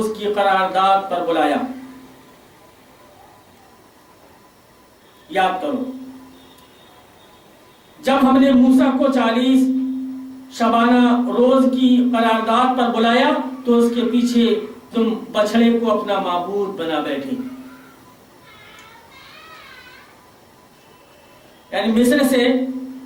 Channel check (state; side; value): identical; both; correlation 1.00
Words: کی قرارداد پر بلایا، یاد کرو جب ہم نے موسیٰ کو 40 شبانہ روز کی قرارداد پر بلایا تو اس کے پیچھے تم بچڑے کو اپنا معبود بنا بیٹھے۔ یعنی مصر سے